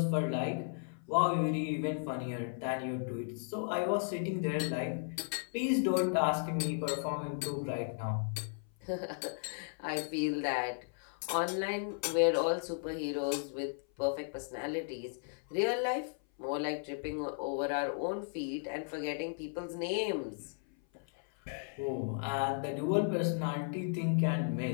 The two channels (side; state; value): right; silent; 54 dB below the other